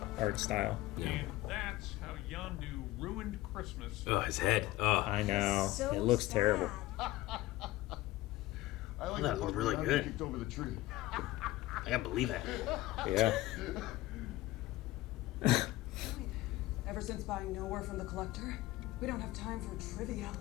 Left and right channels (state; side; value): quieter; right; 17.3 dB